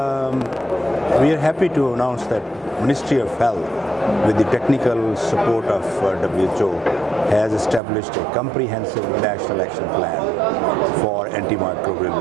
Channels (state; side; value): drops out; left; at 7.8 s